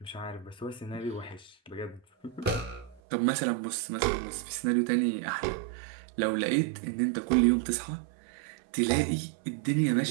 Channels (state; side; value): drops out; left; at 3.0 s